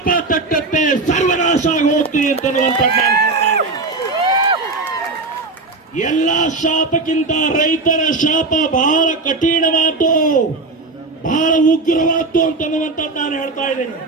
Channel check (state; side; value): quieter; left; 3.6 dB